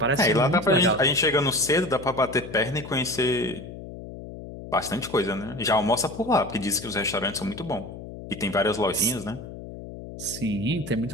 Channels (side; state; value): left; noise; hum, 12 dB below the sound